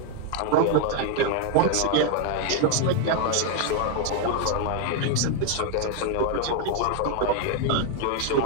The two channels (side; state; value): both; different; correlation 0.00